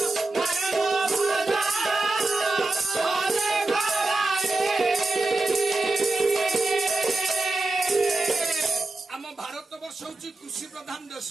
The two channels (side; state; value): left; quieter; 3.1 dB